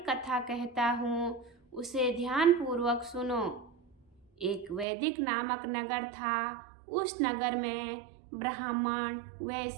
कथा कहता हूँ, उसे ध्यान पूर्वक सुनो। एक वैदिक नामक नगर था। उस नगर में ब्राह्मण,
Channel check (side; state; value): left; drops out; at 4.9 s